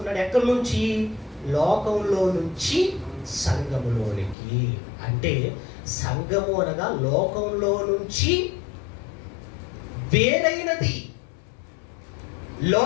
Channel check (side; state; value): right; drops out; at 4.4 s